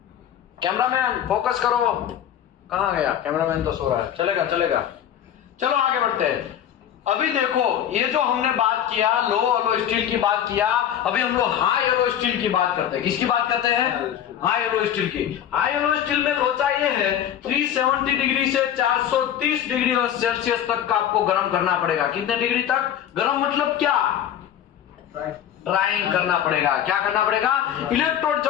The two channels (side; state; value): right; quieter; 10.1 dB